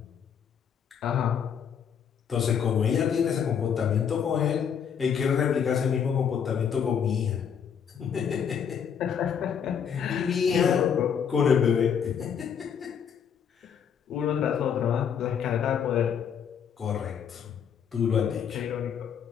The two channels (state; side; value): quieter; right; 7.7 dB